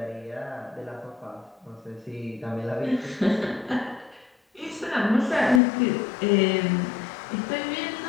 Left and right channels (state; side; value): drops out; right; at 5.6 s